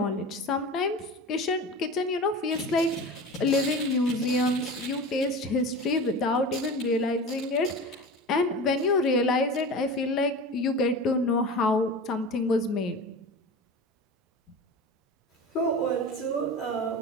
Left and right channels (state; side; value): normal; both; correlation 0.32